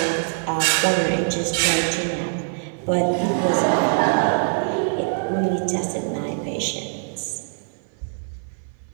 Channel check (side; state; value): left; silent; 56 dB below the other